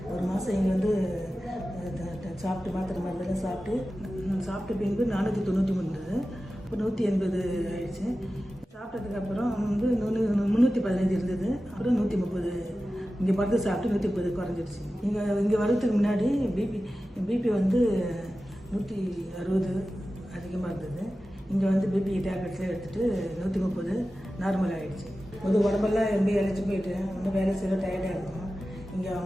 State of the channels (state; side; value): normal; both; correlation 0.94